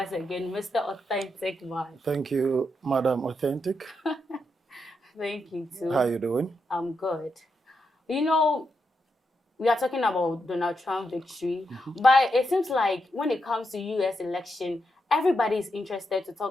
again, Mr. Authentic Man. Thank you, Madam Authentic. Thank you, too. How are you doing? I'm good. You know, we are talking about Donald Trump victory, but it seems like when it comes to U.S. election, everybody is interested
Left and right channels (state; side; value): normal; both; correlation 0.83